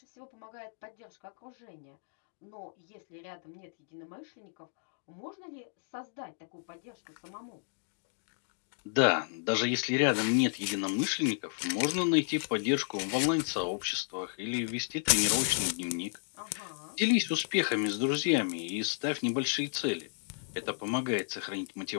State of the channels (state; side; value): silent; right; digital silence